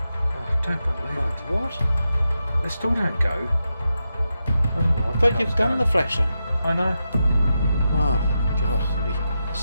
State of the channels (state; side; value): inverted; both; correlation -0.88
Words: Oh, don't believe it. What? They still don't go. I don't know what But you've done the flasher. I know. Oh, God. It'll be